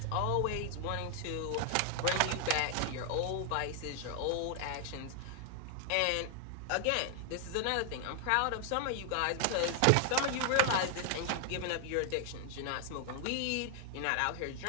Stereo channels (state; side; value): different; both; correlation 0.00